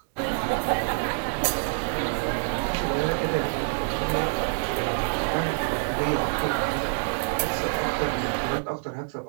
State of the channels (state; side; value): silent; left; 61 dB below the other